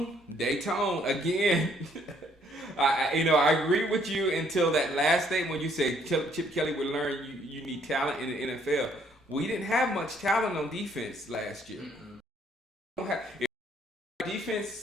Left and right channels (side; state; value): both; normal; correlation 0.66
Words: again. I agree with you until that last statement when you said Chip Kelly would learn you need talent in the NFL. We didn't have much talent on defense last year.